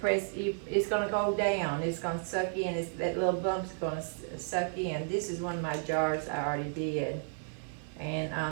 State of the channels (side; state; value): left; silent; 56 dB below the other